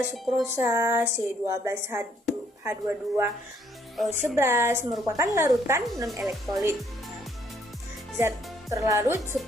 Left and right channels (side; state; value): both; normal; correlation 0.67